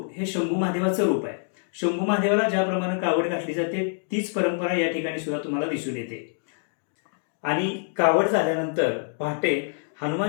हे शंभू महादेवाचं रूप आहे. शंभू महादेवाला ज्याप्रमाणे कावड घातली जाते तीच परंपरा या ठिकाणी सुद्धा तुम्हाला दिसून येते. आणि कावड झाल्यानंतर पहाटे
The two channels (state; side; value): silent; right; digital silence